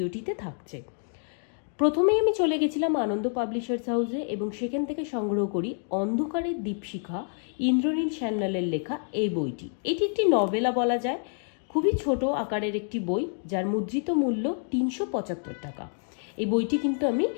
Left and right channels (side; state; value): right; silent; 56 dB below the other